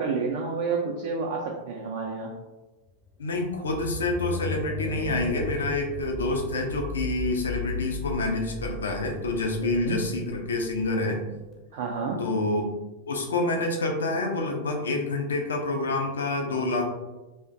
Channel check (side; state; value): both; normal; correlation -0.15